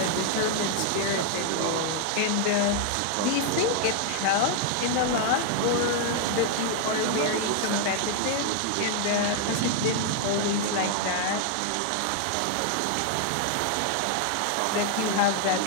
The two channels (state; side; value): different; both; correlation 0.00